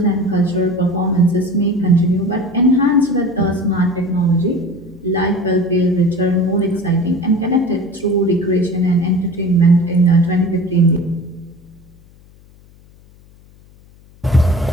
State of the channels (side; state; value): left; noise; hum, 27 dB below the sound